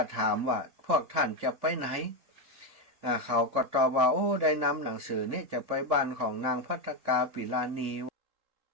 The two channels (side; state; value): left; late; 3.7 ms